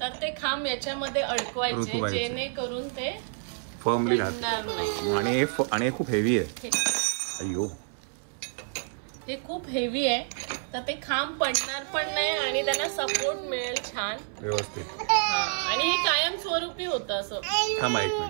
तर ते खांब याच्यामध्ये अडकवायचे जेणेकरून ते फर्मली राहतात. आणि खूप हेवी आहे. अय्यो, ते खूप हेवी आहे तर ते खांब पडणार पण नाही आणि त्यांना सपोर्ट मिळेल छान व्यवस्थित. आणि हे कायम स्वरूपी होतं असं.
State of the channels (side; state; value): left; silent; 59 dB below the other